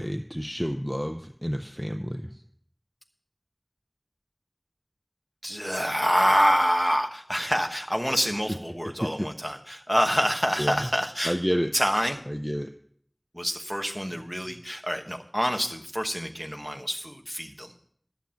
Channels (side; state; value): both; identical; correlation 1.00